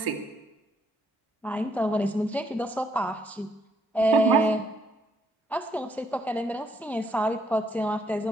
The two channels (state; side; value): normal; both; correlation 0.72